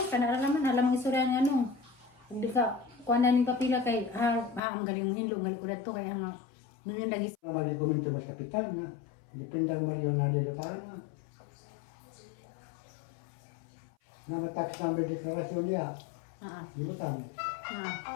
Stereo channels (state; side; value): drops out; right; at 4.6 s